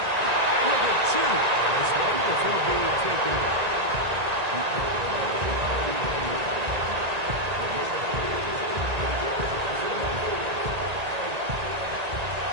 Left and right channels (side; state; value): left; late; 1.8 ms